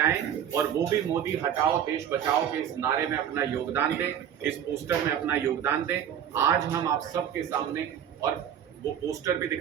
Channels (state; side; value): quieter; left; 9.4 dB